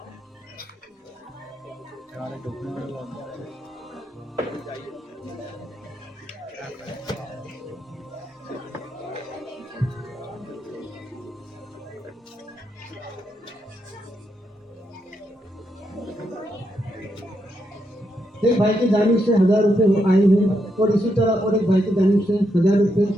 ایک بھائی کی جانب سے 1000 روپے آئے ہیں اور اسی طرح اور ایک بھائی کی جانب سے 1000 روپے،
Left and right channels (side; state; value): both; normal; correlation 0.81